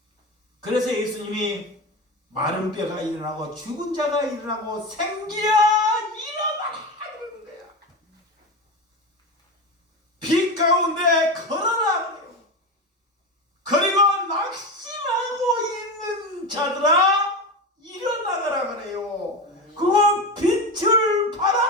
그래서 예수님이 마른 뼈가 일어나고 죽은 자가 일어나고 생기야 일어나라 그러는 거야. 빛 가운데 걸어라 그래요. 그리고 낙심하고 있는 자들아 일어나가라 그래요. 그거 빛을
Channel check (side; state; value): both; normal; correlation 0.21